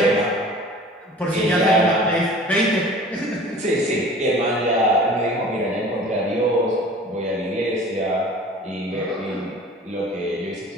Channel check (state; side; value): normal; both; correlation 0.44